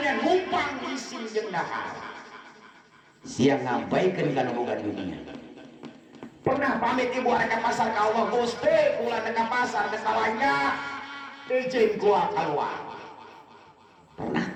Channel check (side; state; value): both; identical; correlation 1.00